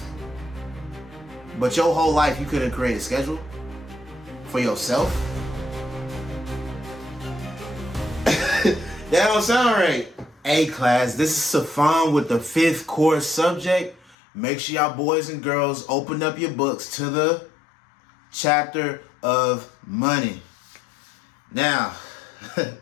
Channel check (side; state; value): right; drops out; at 14.2 s